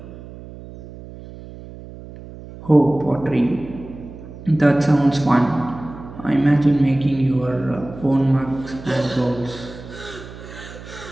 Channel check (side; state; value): right; noise; hum, 15 dB below the sound